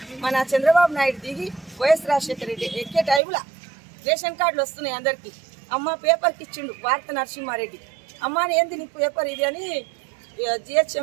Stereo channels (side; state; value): left; drops out; at 3.2 s